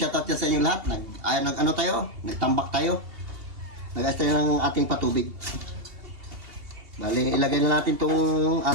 yan sa inyong lahat. Ano tayo? Nagtambak tayo. Nag-ayos tayo ng ating patubig. Bali, ilagay na natin itong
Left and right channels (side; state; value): left; late; 2.8 ms